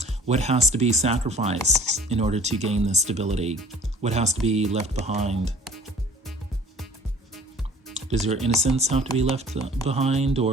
What has to be sacrificed in order to gain this stability? What has to be left behind? Does your innocence have to be left behind,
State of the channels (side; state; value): both; normal; correlation 0.49